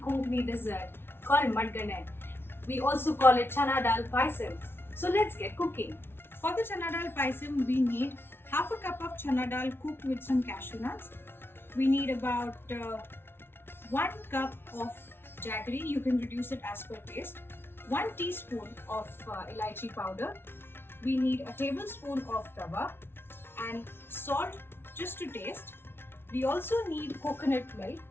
dessert called Madgane. We also call it Chana Daal Payasam. So let's get cooking. For the Chana Daal Payasam, we need half a cup of Chana Dal cooked with some cashew nuts. We need about 1 cup of jaggery, you can reduce it as per taste. 1 teaspoon of elaichi powder. We need a tablespoon of rava and salt just to taste. We also need coconut milk,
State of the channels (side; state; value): right; late; 0.11 ms